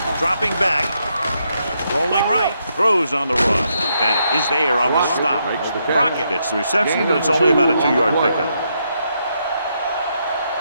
Dropping back. Rolling right. Throws on the run. Bennett is there on the stop. Crockett gets the reception, but it's only about a 2-yard pickup.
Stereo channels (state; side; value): inverted; both; correlation -0.79